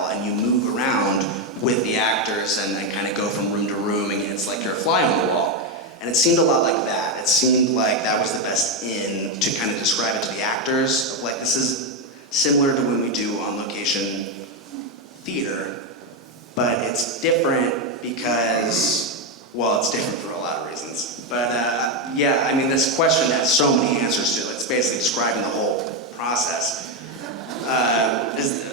and you move around with the actors and then kind of go from room to room, and it's like you're a fly on the wall. And it seemed a lot like that. It seemed like that was the best in to kind of describe it to the actors. Like this is similar to when we do on-location theater, but it's different because, well, it's different for a lot of reasons. But yeah, I mean, this question has so many answers to it. It's basically describing the whole process.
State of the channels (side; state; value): both; normal; correlation 0.06